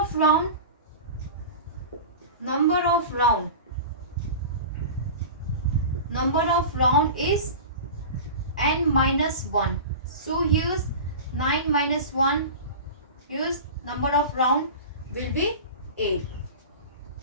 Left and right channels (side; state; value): both; inverted; correlation -0.32